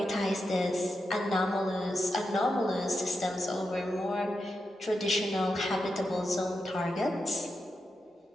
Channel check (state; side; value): normal; both; correlation 0.87